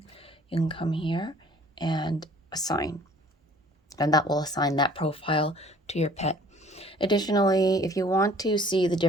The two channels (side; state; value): both; normal; correlation 0.53